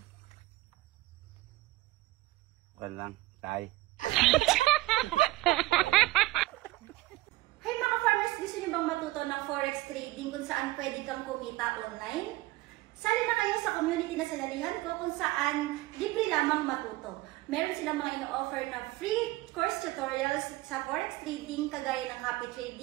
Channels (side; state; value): left; quieter; 19.5 dB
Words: Wala lang. Tay. Hey mga farmers, gusto nyo bang matuto ng forex trading kung saan pwede kang kumita online? Sali na kayo sa community na sinalihan ko kung saan libre lamang matuto. Meron silang mga ino-offer na free course tutorials sa forex trading kagaya ng copy